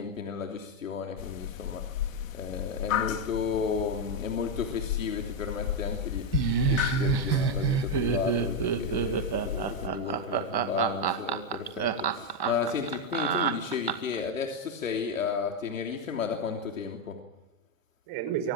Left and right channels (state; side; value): late; right; 1.1 ms